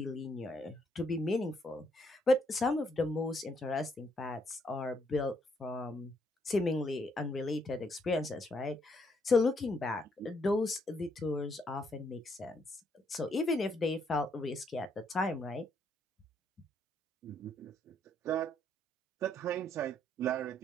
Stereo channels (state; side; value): normal; both; correlation 0.72